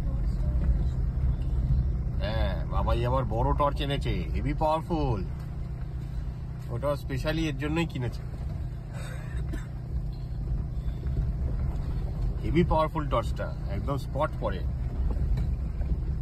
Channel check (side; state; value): both; identical; correlation 1.00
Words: হ্যাঁ, বাবাই আবার বড় টর্চ এনেছে, হেভি পাওয়ারফুল। ওটা স্পেশালি এর জন্যই কিনেছে, হেভি পাওয়ারফুল টর্চটা, একদম স্পট পড়ে।